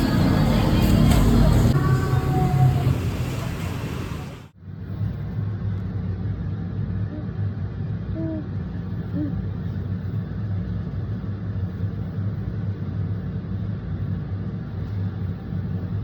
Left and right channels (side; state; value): both; identical; correlation 1.00